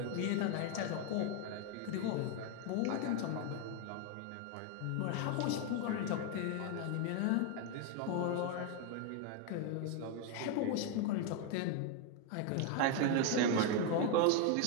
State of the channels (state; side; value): different; both; correlation 0.01